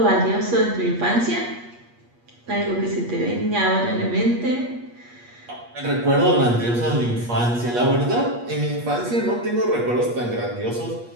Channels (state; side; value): late; left; 8.4 ms